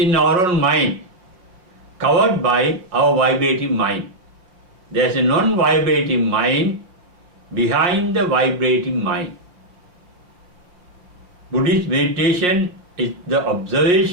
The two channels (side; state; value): left; late; 5.6 ms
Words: our own mind, covered by our vibrating mind. There is a non-vibrating mind behind the vibrating mind. Buddhist meditation is the